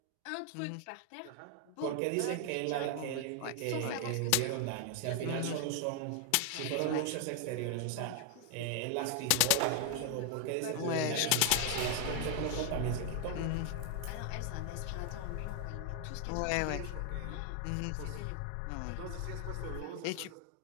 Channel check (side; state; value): both; different; correlation 0.00